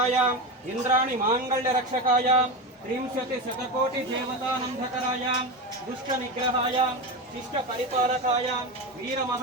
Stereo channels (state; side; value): normal; both; correlation 0.19